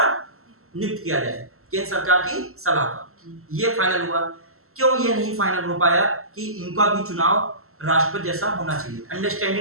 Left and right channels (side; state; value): left; late; 0.63 ms